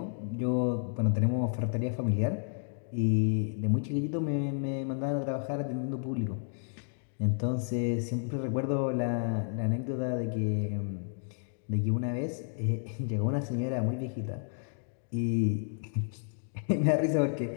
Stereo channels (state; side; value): silent; right; digital silence